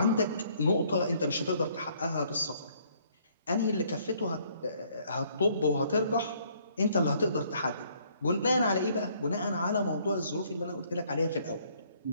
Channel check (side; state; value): both; inverted; correlation -0.64